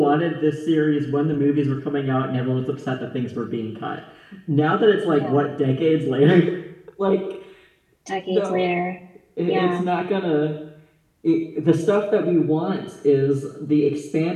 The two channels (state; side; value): identical; both; correlation 1.00